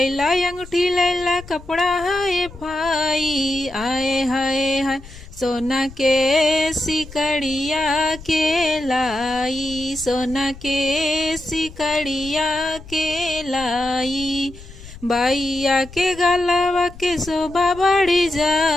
अंगूठी लैला कपड़ा हाय भाई। आए हाय हाय सोना के सिकड़िया के लाई, सोना के सिकड़िया के लाई। बाइया के गलवा के शोभा बढ़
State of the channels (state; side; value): noise; left; rumble, 17 dB below the sound